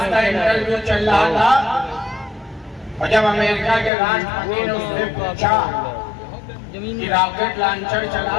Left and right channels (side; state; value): right; drops out; at 3.9 s